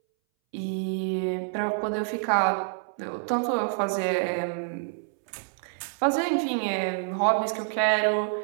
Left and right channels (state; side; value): silent; left; 60 dB below the other